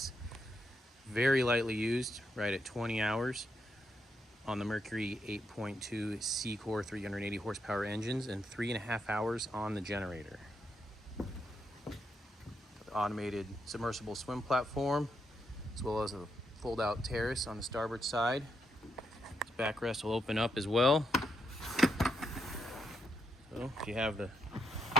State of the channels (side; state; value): both; normal; correlation 0.80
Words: Very lightly used, right at 20 hours on the Mercury 8.2 C-Core 380 horsepower engines and 3.5 hours on the generator. Automated submersible swim platform, as well as a fold-out terrace on the starboard side. This backrest will open up as well. So if you have the